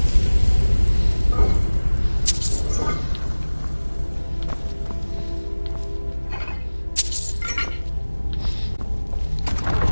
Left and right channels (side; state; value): both; inverted; correlation -1.00